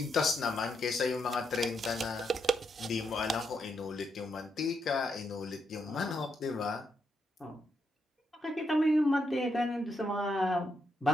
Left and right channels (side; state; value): both; normal; correlation 0.80